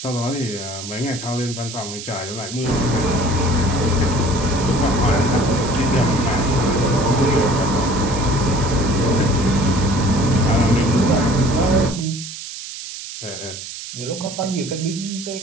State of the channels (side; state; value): right; noise; hiss, 10 dB below the sound